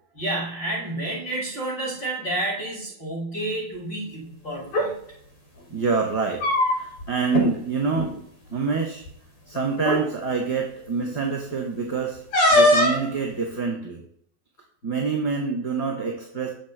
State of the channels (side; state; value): right; late; 12 ms